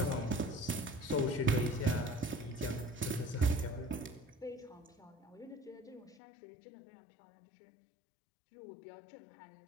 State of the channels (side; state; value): right; drops out; at 6.2 s